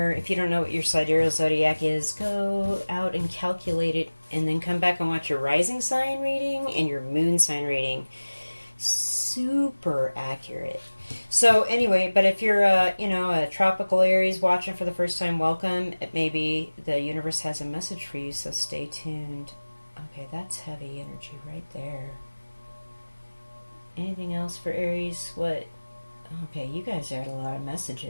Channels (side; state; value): both; inverted; correlation -1.00